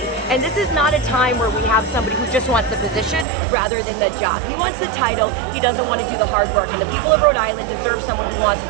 And this is not a time where we have somebody who just wants the position rather than the job. He wants the title, he doesn't want to do the hard work, and the people of Rhode Island deserve someone who wants to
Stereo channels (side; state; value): left; drops out; at 3.2 s